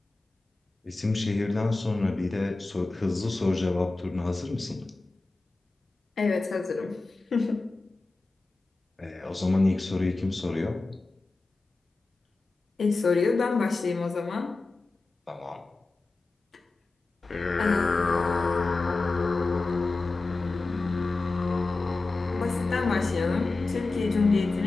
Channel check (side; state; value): right; quieter; 3.4 dB